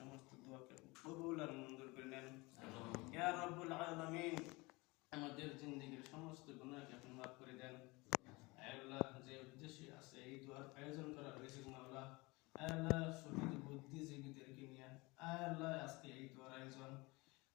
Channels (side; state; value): right; quieter; 24.4 dB